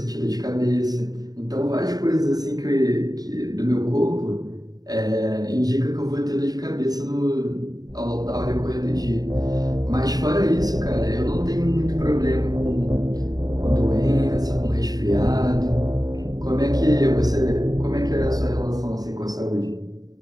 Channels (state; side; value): late; left; 0.18 ms